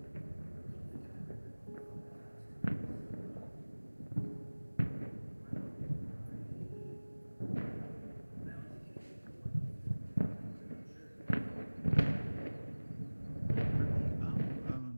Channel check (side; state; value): both; inverted; correlation -1.00